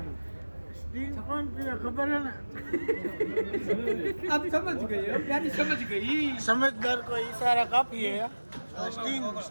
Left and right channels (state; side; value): inverted; both; correlation -1.00